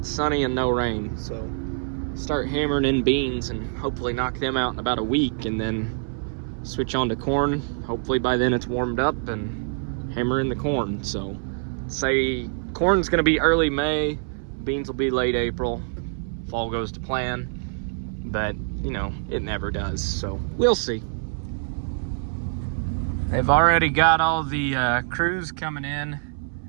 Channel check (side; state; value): left; silent; 62 dB below the other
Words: sunny and no rain. So start hammering in beans and hopefully knock them out in about a week, and then switch on to corn. Hopefully by then it's warmed up and hammer in the corn. So say corn's gonna be early May, beans will be late April, fall goes to plan, but you know, it never does. So we'll see. They've already got all the crews coming in